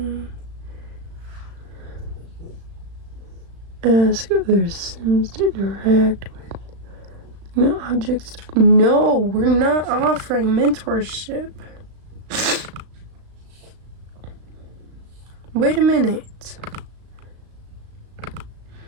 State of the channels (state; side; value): late; left; 36 ms